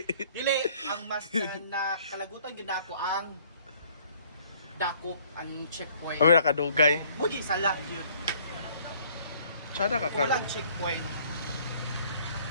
Dili, ang mas na kalagutan yun ako ang dakok, ang checkpoint. Ay, nakadugay. Mudi sa lock yun. Tsada ka karon. Kulang checkpoint.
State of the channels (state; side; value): inverted; both; correlation -0.59